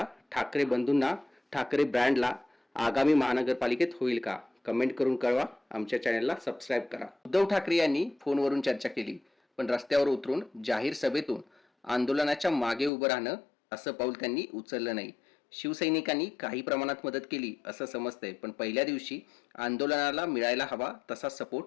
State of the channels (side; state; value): right; drops out; at 12.9 s